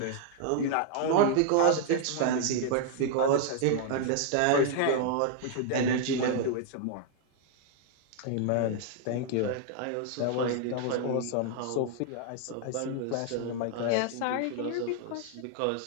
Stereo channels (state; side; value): different; both; correlation 0.00